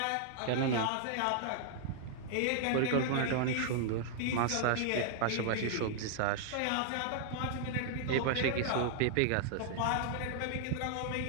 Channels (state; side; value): different; both; correlation -0.01